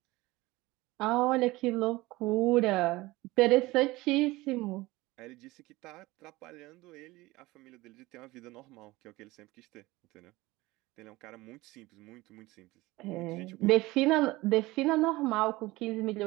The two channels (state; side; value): quieter; left; 20.1 dB